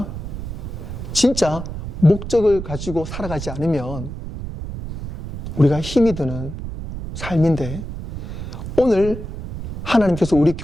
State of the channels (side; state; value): right; noise; rumble, 8 dB below the sound